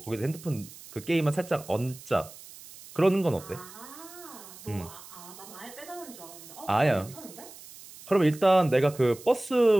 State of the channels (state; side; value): noise; right; hiss, 18 dB below the sound